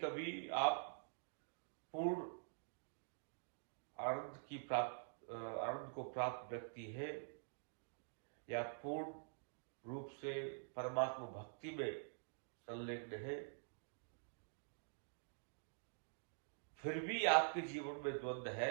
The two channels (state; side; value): silent; left; digital silence